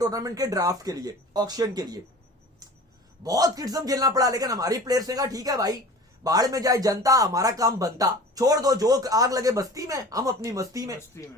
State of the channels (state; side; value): normal; both; correlation 0.40